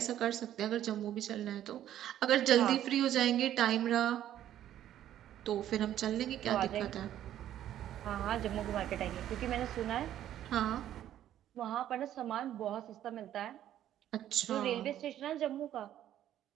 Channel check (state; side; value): quieter; left; 11.7 dB